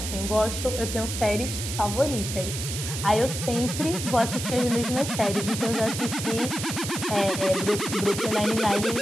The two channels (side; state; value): right; noise; hiss, 6 dB below the sound